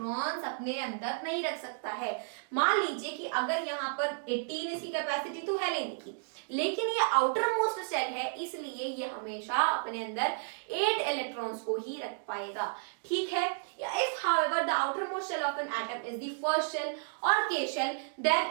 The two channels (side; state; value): left; silent; digital silence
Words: अपने अंदर नहीं रख सकता है। मान लीजिए कि अगर यहाँ पर 18 इसकी कैपेसिटी तो है लेने की, लेकिन ये आउटर मोस्ट शेल है, इसलिए ये हमेशा अपने अंदर 8 इलेक्ट्रॉन्स को ही रख पाएगा। ठीक है, if however the outermost shell of an atom is the first shell or K shell, then